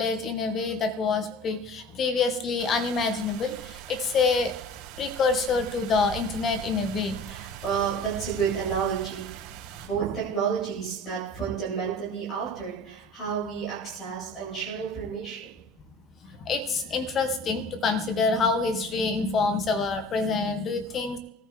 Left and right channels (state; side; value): normal; both; correlation 0.41